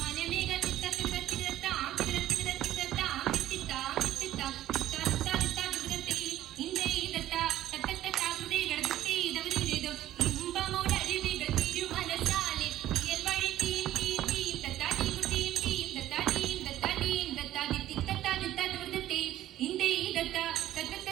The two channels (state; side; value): quieter; left; 13.4 dB